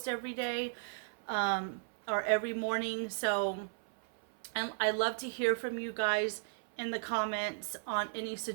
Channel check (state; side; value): silent; left; 54 dB below the other